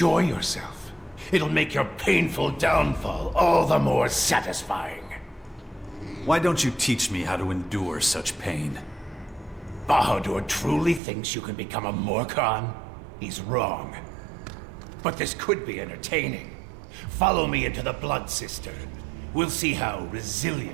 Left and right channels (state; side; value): drops out; left; at 11.0 s